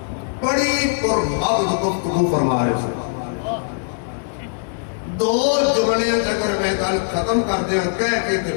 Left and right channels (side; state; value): right; silent; digital silence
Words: بڑی پرمغز گفتگو فرما رہے تھے. دو جملے اگر میں گل ختم کر دیا کہہ کے تے